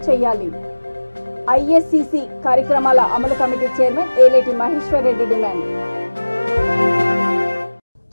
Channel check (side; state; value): both; inverted; correlation -1.00